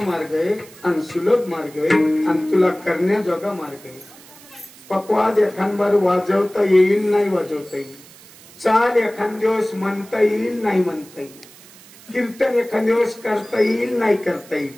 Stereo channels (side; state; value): right; noise; hiss, 22 dB below the sound